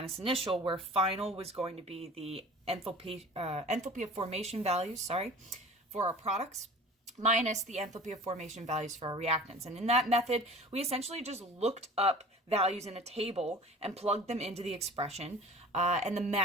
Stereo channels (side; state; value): both; normal; correlation 0.42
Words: initial, where final was going to be the enthalpy of formation values, for our products, minus the enthalpy of formation values for our reactants. And in that method, we essentially just looked up values in a table and plugged them into the expression. And the